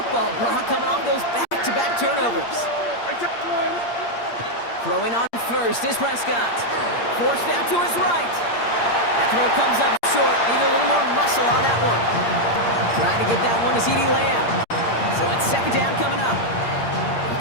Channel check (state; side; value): late; right; 8.6 ms